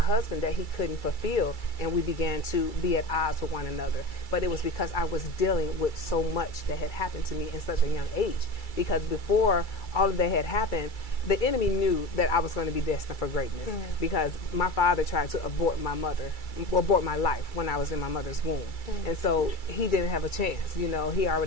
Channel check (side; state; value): right; late; 2.3 ms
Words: that he couldn't fulfill, and we began to be at odds with one another. But it was because I was dealing with so much that had happened to me in such a young age. Because before all of that had happened, the enemy knew that I was going to be destined for greatness, because my father tried to abort my life when I was in my mother's womb. And so he didn't have a chance. You know,